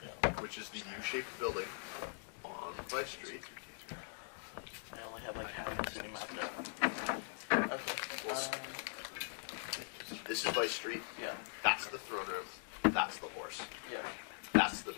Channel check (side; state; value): right; silent; digital silence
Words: which is the U-shaped building on Vice Street. I only have like half the city map there. Okay. Well, This is Vice Street. Yeah. That's the throne room. That's the horse. Yeah. That's the